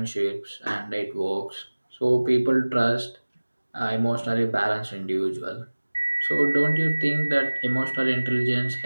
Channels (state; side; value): inverted; both; correlation -1.00